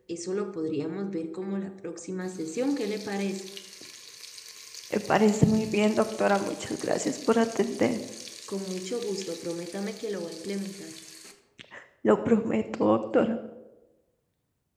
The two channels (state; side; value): identical; both; correlation 1.00